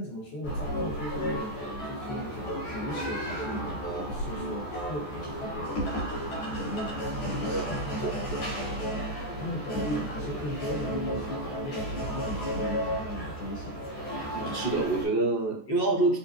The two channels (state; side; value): late; right; 14 ms